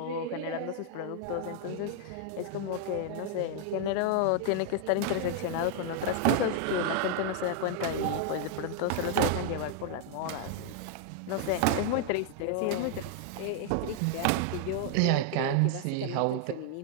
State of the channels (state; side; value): different; both; correlation 0.00